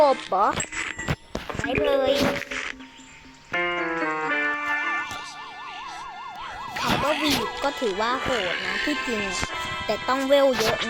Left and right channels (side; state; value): both; identical; correlation 1.00